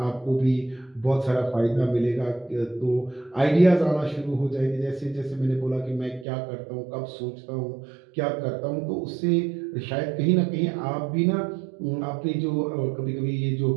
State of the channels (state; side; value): drops out; left; at 6.2 s